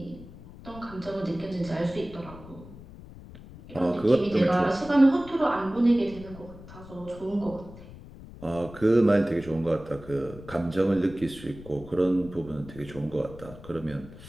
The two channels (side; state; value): left; noise; rumble, 17 dB below the sound